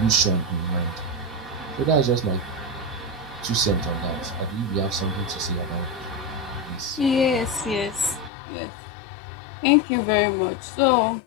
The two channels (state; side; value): drops out; right; at 8.3 s